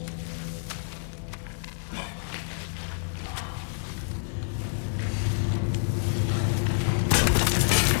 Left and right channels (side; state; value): right; silent; digital silence